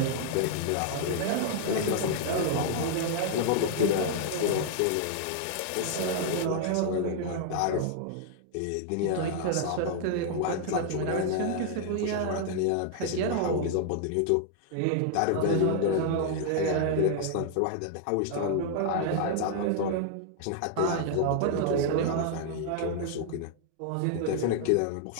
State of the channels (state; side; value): different; both; correlation 0.00